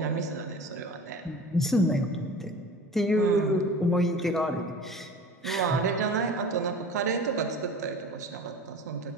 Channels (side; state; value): both; normal; correlation 0.38